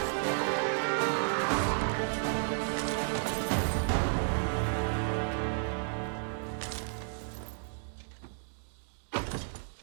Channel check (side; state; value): left; silent; digital silence